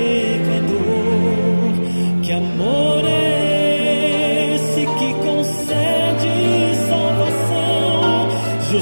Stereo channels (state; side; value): inverted; both; correlation -1.00